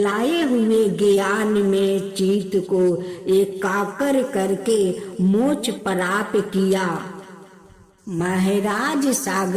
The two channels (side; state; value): both; identical; correlation 1.00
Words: हुए ज्ञान में चित्त को एकाग्र करके मोक्ष प्राप्त किया। महाराज